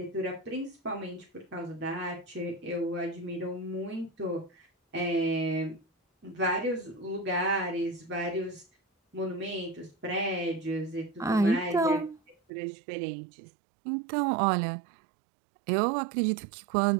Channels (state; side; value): drops out; left; at 12.4 s